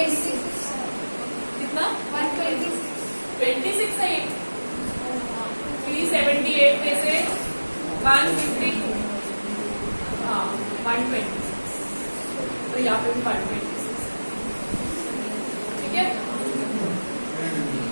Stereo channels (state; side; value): inverted; both; correlation -1.00